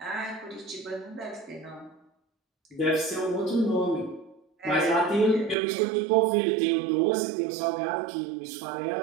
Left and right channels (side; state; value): left; drops out; at 5.6 s